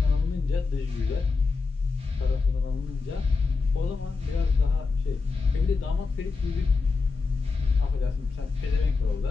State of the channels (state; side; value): quieter; right; 4.3 dB